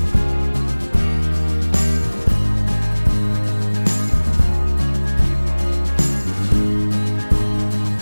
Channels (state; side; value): inverted; both; correlation -1.00